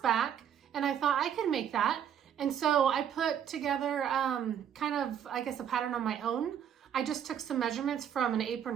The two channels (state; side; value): quieter; left; 9.0 dB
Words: and I thought I could make that. And so I put together kind of, I guess, a pattern on my own. I just took some measurements from an